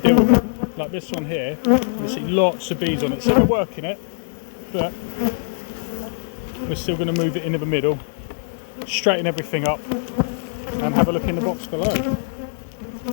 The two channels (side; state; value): right; silent; digital silence